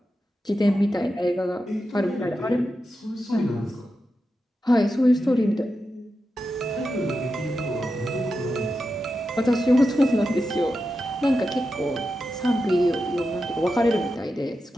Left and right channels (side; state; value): both; normal; correlation 0.89